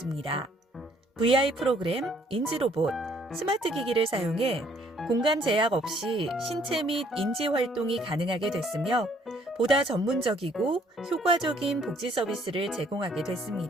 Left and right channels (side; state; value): both; normal; correlation 0.64